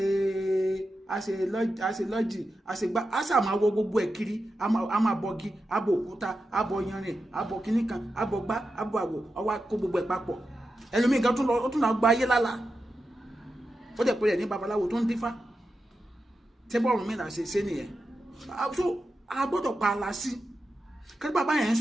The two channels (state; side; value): normal; both; correlation 0.90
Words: lọ́jì, a ṣe gbá, a ṣà máa wọ gbogbo ẹ̀ kiri, a máa bọgi, a bọ òkúta, a bọ yanrìn, a bọ kíní kan, a bọ gbá, a bọ àwọ̀, ọwọ́ kó gbogbo ẹ̀ papọ̀. Ẹlòmíì gan ó tún lọ gba ayé lálá, ó dẹ̀ pé rẹ̀ ní babaláwo tó ń dífá. Tẹ́bọ̀ Ọ̀rúnmìlà ṣe nìyẹn. So a gbọ́dọ̀ pa ala sí kí bàbá yẹn ń